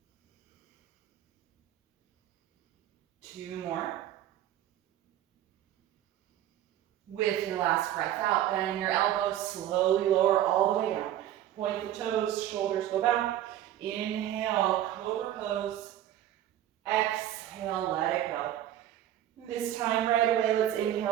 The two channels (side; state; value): left; quieter; 12.2 dB